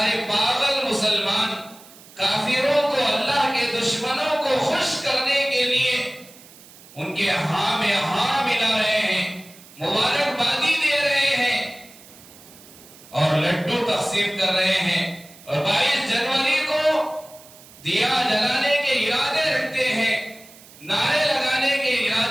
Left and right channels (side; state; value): right; noise; hiss, 22 dB below the sound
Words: پاگل مسلمان کافروں کو، اللہ کے دشمنوں کو خوش کرنے کے لیے ان کے ہاں میں ہاں ملا رہے ہیں، مبارکبادی دے رہے ہیں اور لڈو تقسیم کر رہے ہیں، اور 22 جنوری کو دیا جلانے کے ارادے رکھتے ہیں، نعرے لگانے کے